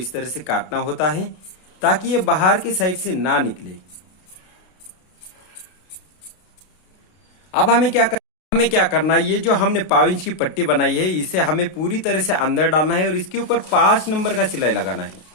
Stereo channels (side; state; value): right; late; 32 ms